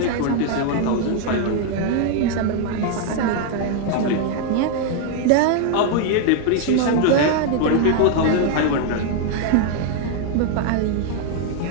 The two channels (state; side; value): different; both; correlation 0.00